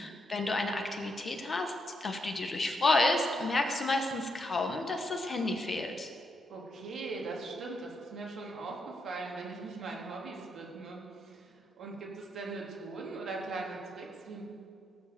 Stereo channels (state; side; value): normal; both; correlation 0.80